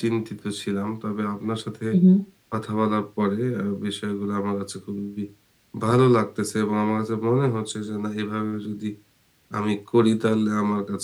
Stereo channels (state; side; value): identical; both; correlation 1.00